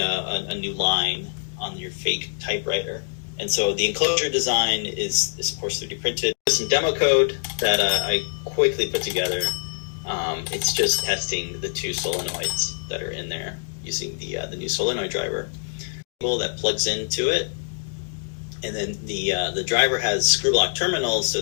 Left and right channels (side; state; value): right; silent; digital silence